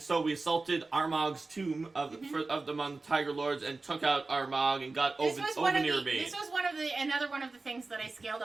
so we assaulted Armag's tomb of among the Tiger Lords and took out Armag and got Ovenir Bane. This was another one of the things that I scaled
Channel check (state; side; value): quieter; left; 3.6 dB